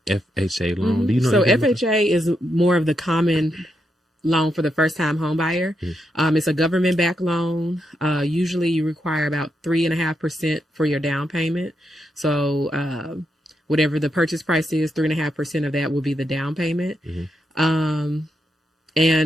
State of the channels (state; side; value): normal; both; correlation 0.82